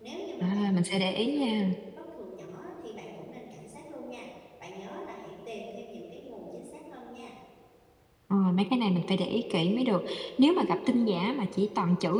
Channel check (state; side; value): identical; both; correlation 1.00